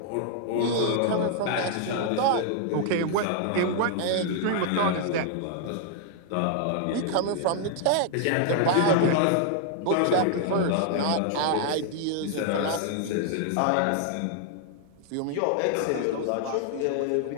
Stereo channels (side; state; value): both; different; correlation 0.00